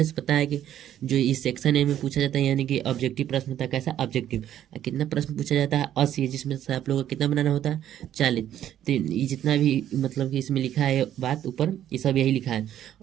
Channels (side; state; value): left; quieter; 11.2 dB